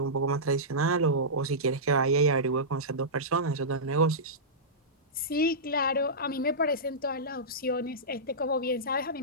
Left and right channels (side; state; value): both; normal; correlation -0.16